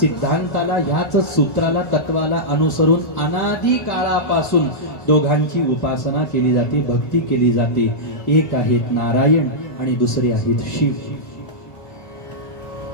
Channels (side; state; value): right; late; 1.8 ms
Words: ह्याच सूत्राला, तत्वाला अनुसरून अनादी काळापासून दोघांची उपासना केली जाते, भक्ती केली जाते. एक आहेत नारायण आणि दुसरे आहेत शिव.